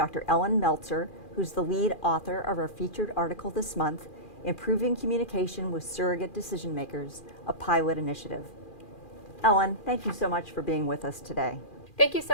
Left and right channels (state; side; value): late; right; 2.4 ms